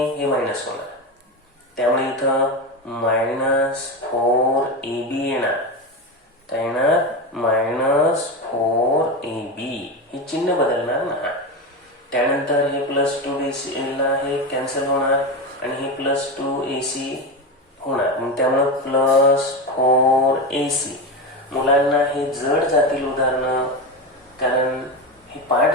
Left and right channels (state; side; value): normal; both; correlation 0.18